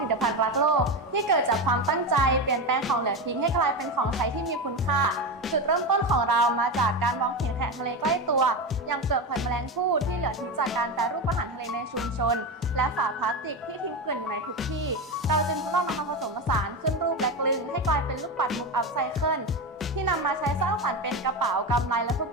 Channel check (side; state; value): both; normal; correlation 0.18